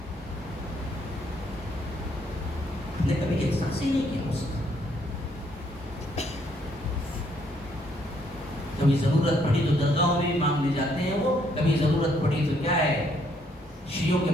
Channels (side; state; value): both; normal; correlation 0.69